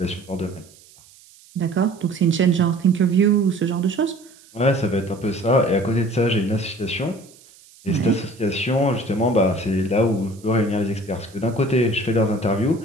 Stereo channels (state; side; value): noise; right; hiss, 26 dB below the sound